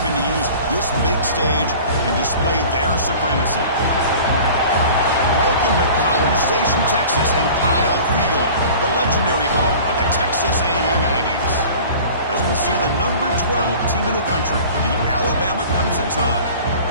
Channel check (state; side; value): inverted; both; correlation -0.42